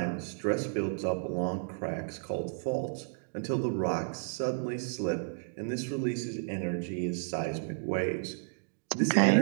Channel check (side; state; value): left; silent; digital silence